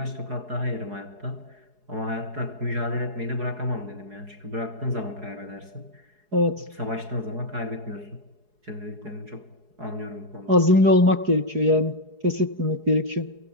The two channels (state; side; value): late; left; 4.8 ms